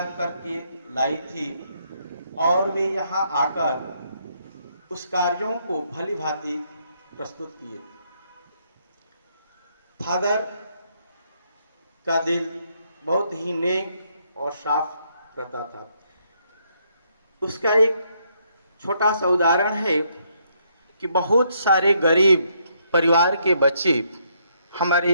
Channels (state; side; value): inverted; both; correlation -0.73